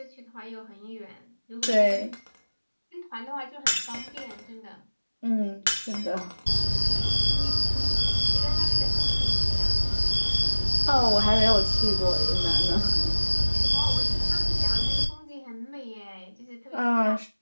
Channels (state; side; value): inverted; both; correlation -1.00